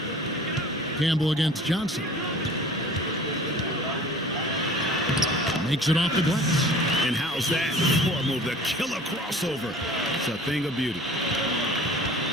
Campbell against Johnson. Makes it off the glass. And how's that? Poor move, the killer crossover. It's a thing of beauty.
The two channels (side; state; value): both; normal; correlation 0.45